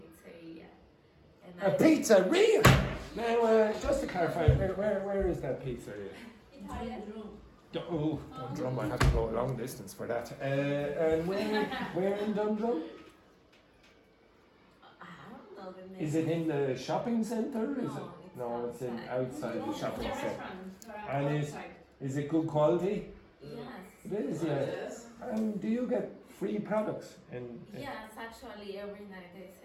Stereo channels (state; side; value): identical; both; correlation 1.00